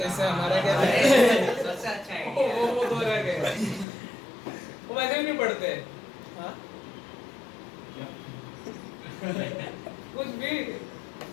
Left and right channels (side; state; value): right; drops out; at 3.9 s